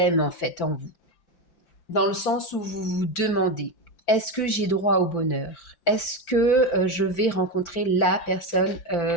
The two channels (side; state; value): right; late; 5.8 ms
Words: en fait, en vous. Dans le sens où vous vous demandez, est-ce que j'ai droit au bonheur? Est-ce que je vais rencontrer la personne